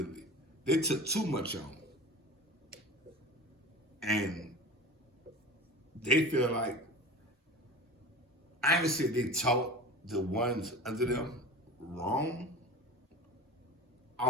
They took too much on. And they feel like, I ain't gonna say they taught the ones under them wrong.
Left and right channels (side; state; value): both; normal; correlation 0.34